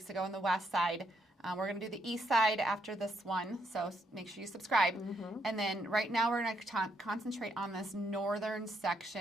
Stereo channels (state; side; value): normal; both; correlation 0.75